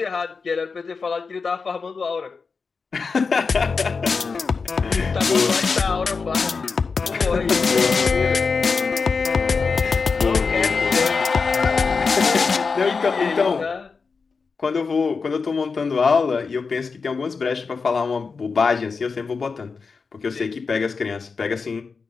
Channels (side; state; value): right; quieter; 4.9 dB